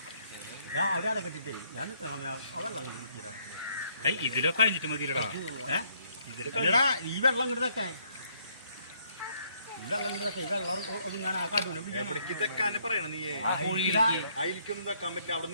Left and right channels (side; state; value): both; inverted; correlation -0.69